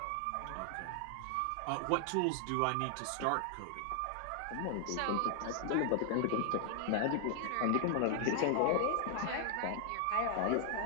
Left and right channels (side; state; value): both; different; correlation 0.00